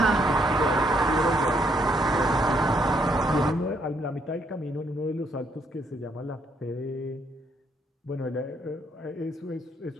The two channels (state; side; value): normal; both; correlation 0.72